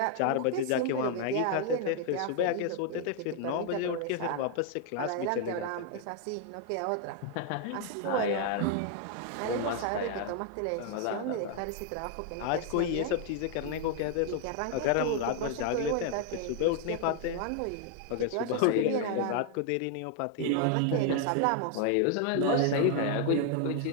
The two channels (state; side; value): different; both; correlation 0.00